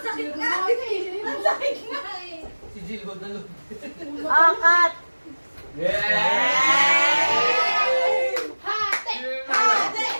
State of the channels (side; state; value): both; inverted; correlation -1.00